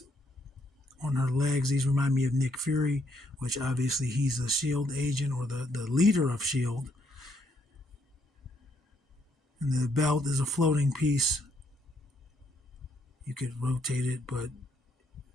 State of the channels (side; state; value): both; normal; correlation 0.72